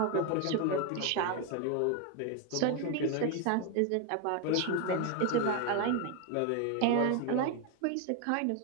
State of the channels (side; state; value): both; different; correlation 0.01